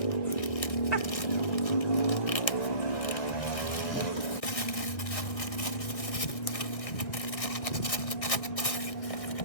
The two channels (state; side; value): late; right; 1.6 ms